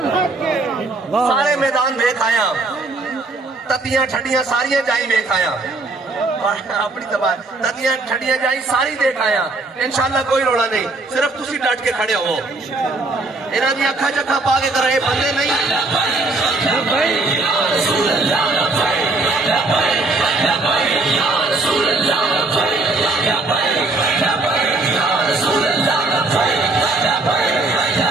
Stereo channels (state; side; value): quieter; left; 3.2 dB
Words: سارے میدان ویکھ آیا, تتیاں ٹھڈیاں ساریاں جائی ویکھ آیا, اپنی تباہ تتیاں ٹھڈیاں جائی ساری دیکھ آیا. انشاءاللہ کوئی روڑا نہیں, صرف تسی ڈٹ کے کھڑے ہو. انہاں دی اکھاں چکھاں پا کے کر رہے بندے نہیں.